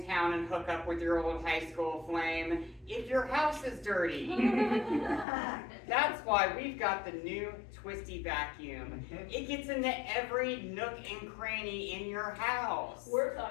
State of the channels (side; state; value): right; drops out; at 5.2 s